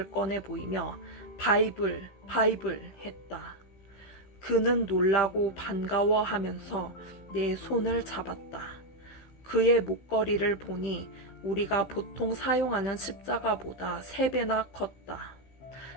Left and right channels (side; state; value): right; late; 16 ms